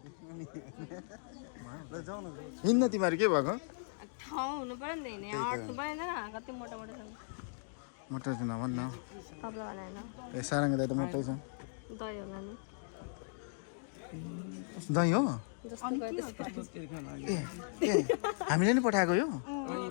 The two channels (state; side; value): silent; right; digital silence